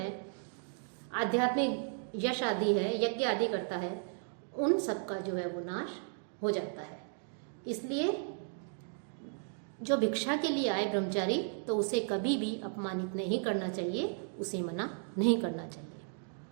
आध्यात्मिक यश आदि है, यज्ञ आदि करता है, उन सब का जो है वो नाश हो जाता है। इसलिए जो भिक्षा के लिए आए ब्रह्मचारी तो उसे कभी भी अपमानित नहीं करना चाहिए, उसे मना नहीं करना चाहिए।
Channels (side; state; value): left; silent; 55 dB below the other